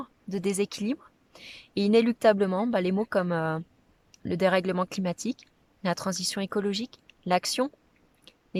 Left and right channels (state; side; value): identical; both; correlation 1.00